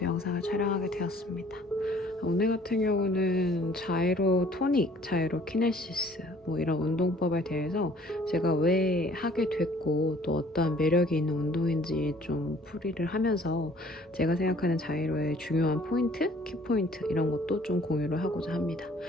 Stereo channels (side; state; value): both; normal; correlation 0.56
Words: 영상을 촬영하게 되었습니다. 오늘 같은 경우는 자이로 토닉, 자이로 키네시스 뭐 이런 운동법에 대해서 제가 왜 하게 됐고 또 어떠한 매력이 있는 운동인지 좀 풀이를 하면서 제가 생각하는 자이로의 중요한 포인트, 키포인트 이런 것도 좀 공유를 하고자 합니다.